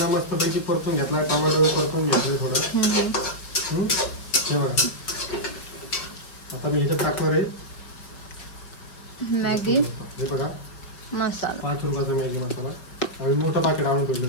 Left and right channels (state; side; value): late; right; 5.3 ms